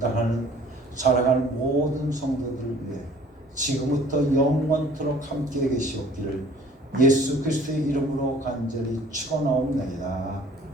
사랑하는 모든 성도들을 위해 지금부터 영원토록 함께 계시옵기를 예수 그리스도의 이름으로 간절히 축원하옵나이다.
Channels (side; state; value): both; normal; correlation 0.52